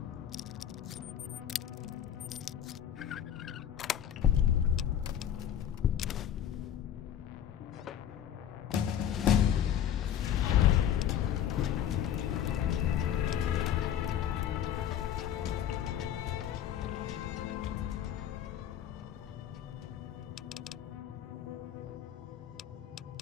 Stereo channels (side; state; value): right; quieter; 10.0 dB